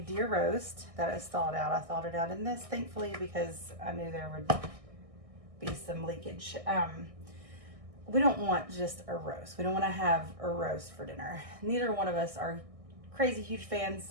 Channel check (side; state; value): left; late; 1.6 ms